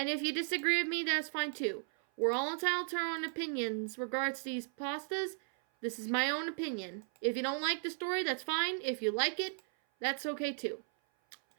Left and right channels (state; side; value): silent; left; 54 dB below the other